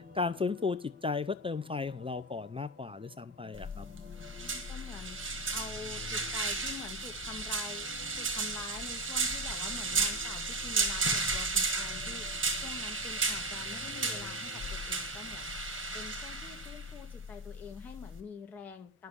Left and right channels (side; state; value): both; normal; correlation 0.15